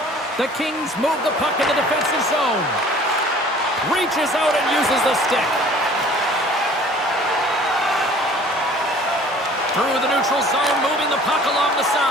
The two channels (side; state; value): both; normal; correlation 0.50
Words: The Kings move the puck in the defensive zone. Reaches out and uses the stick. Through the neutral zone, moving the puck along the